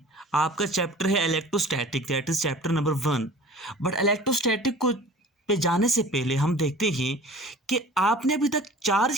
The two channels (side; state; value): both; normal; correlation 0.44